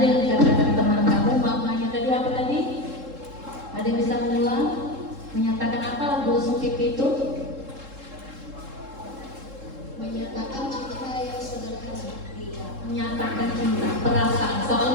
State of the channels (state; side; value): late; left; 3.7 ms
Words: dikatakan teman kamu, maknanya tadi apa tadi? Ada yang bisa mengulang? Menyatakan apa lagu lesung pipi itu? Menyatakan cinta yang sederhana. Menyatakan cinta, perasaan.